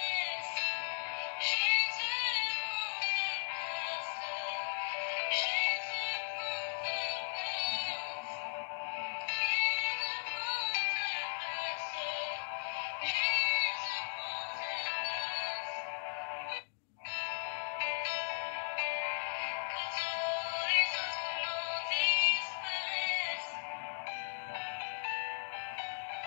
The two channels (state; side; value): silent; right; digital silence